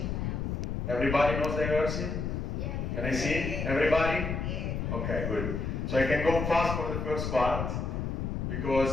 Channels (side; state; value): left; noise; rumble, 2 dB below the sound